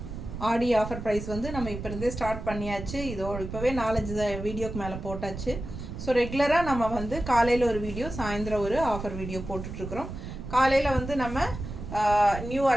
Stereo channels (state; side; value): noise; right; rumble, 8 dB below the sound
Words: ஆடி ஆஃபர் ப்ரைஸ் வந்து நம்ம இப்போ இருந்தே ஸ்டார்ட் பண்ணியாச்சு. இப்போவே 4-5 வீடியோக்கு மேலே போட்டாச்சு. ஸோ ரெகுலராக நம்ம வந்து காலையில் ஒரு வீடியோ, சாயந்தரம் ஒரு ஆஃபர் வீடியோ போட்டுட்ருக்குறோம். காலையில் வந்து நம்ம நியூ